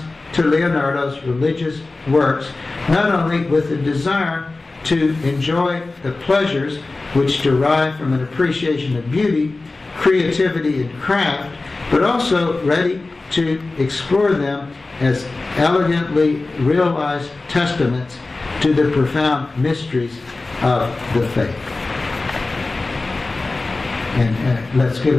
to Leonardo's religious works not only with a desire to enjoy the pleasures which derive from an appreciation of beauty, creativity, and craft, but also ready to explore them as elegantly realized testaments to the profound mysteries of the faith. And let's give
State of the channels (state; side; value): quieter; right; 3.4 dB